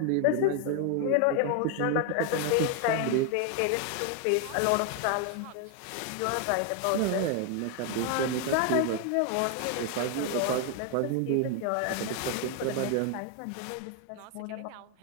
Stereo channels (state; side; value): different; both; correlation 0.01